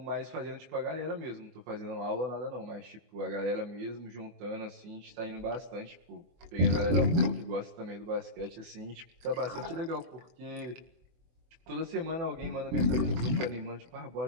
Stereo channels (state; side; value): late; left; 24 ms